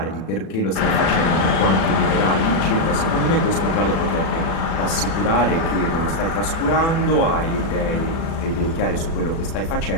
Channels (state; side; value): late; right; 36 ms